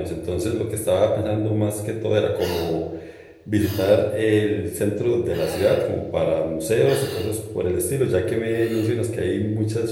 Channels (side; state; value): both; identical; correlation 1.00